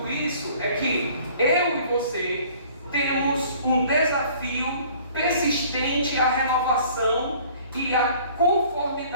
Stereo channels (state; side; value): inverted; both; correlation -0.53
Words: isso é que eu e você temos um desafio persistente à renovação e à